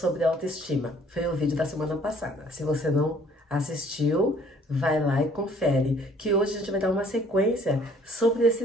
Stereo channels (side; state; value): both; normal; correlation 0.58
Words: autoestima. Foi o vídeo da semana passada. Se você não assistiu, vai lá e confere, que hoje a gente vai dar uma sequência sobre